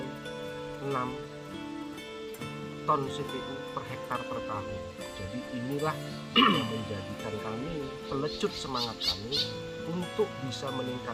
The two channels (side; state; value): both; identical; correlation 1.00